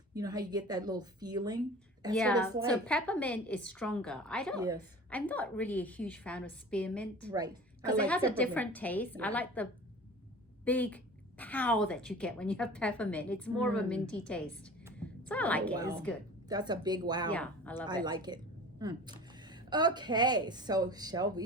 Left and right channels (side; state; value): both; normal; correlation 0.40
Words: you know how you get that little feeling? That's Yeah, what it's like. so peppermint is stronger. Yes, I'm not really a huge fan of spearmint right. I because like it has a peppermint. different taste. Yeah. I like the big pow that you get when you have peppermint. It's more of a minty taste. So I like it. Wow. It's good. That's a big wow. Yeah, I love it. I like it. Okay, so shall